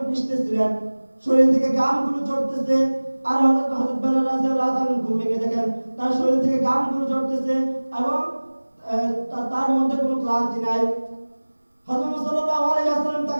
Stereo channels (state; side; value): inverted; both; correlation -1.00